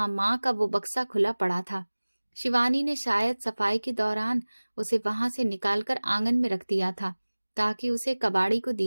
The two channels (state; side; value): inverted; both; correlation -1.00